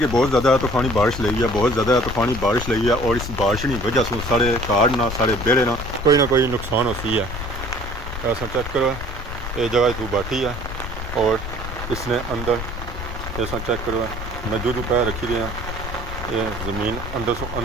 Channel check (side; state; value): left; noise; rumble, 7 dB below the sound